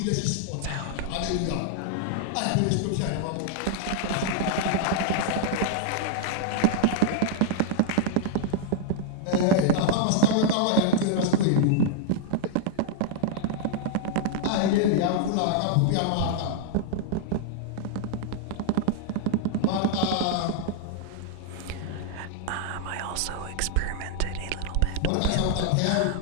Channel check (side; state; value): both; different; correlation -0.01